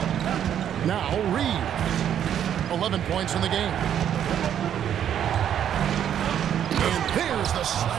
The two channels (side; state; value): left; quieter; 9.7 dB